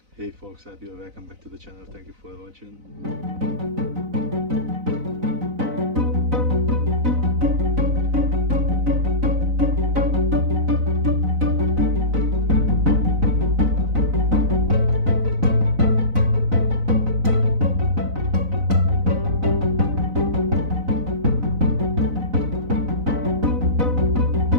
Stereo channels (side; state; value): left; late; 4.0 ms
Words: Hey folks, happy or welcome back to the channel. Thank you for watching.